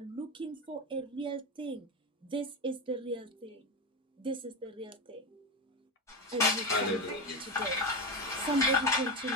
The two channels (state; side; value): normal; both; correlation 0.15